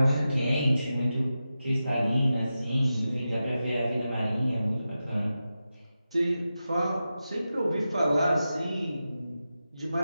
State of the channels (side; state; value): both; inverted; correlation -0.92